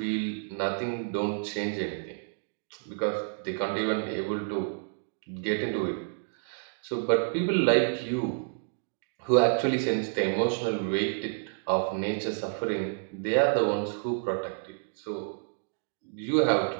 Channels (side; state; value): left; silent; digital silence